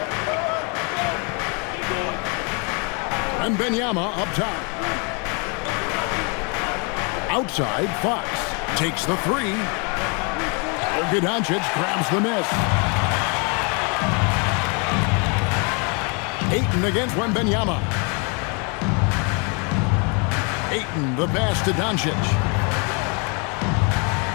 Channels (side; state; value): right; quieter; 34.2 dB